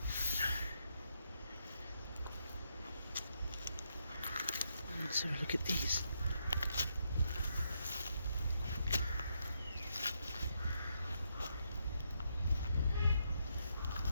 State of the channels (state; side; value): inverted; both; correlation -0.79